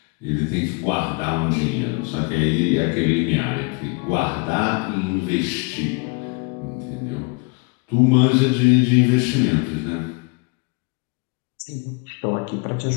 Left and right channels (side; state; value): right; quieter; 30.9 dB